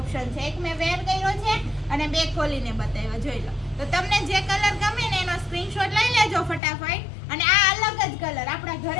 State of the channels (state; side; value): drops out; right; at 6.6 s